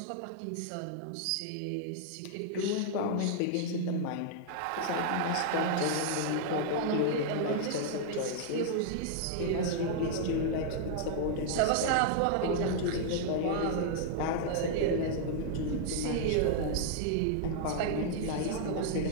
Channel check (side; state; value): both; different; correlation -0.01